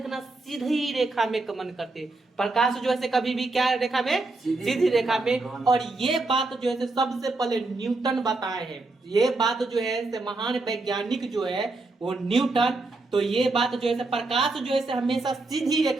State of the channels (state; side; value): quieter; left; 3.3 dB